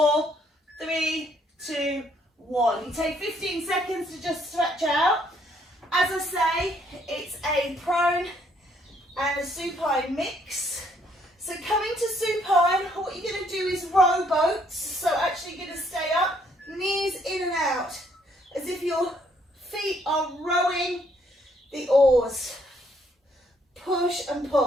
3, 2, 1. You take 15 seconds to just stretch out. As I say, it's a prone and a supine mix. So coming to supine, what you're going to do is row boats. So actually you're going to stay up, knees in and out, as if your feet are rowing the oars. Push and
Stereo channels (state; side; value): normal; both; correlation 0.67